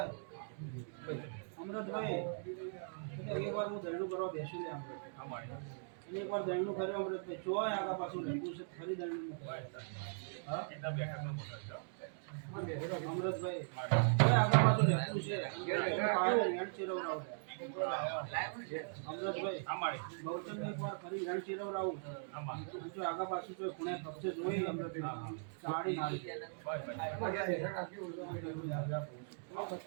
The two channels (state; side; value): silent; left; digital silence